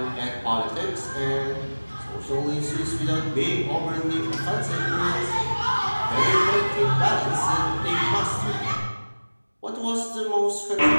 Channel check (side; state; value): both; inverted; correlation -1.00